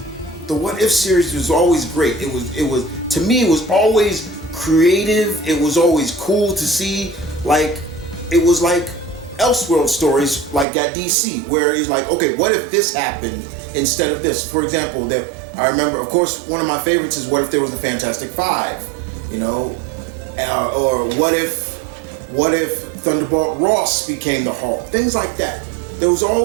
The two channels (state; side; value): drops out; left; at 10.7 s